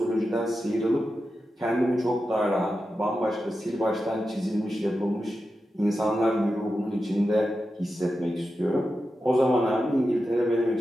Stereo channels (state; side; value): normal; both; correlation 0.90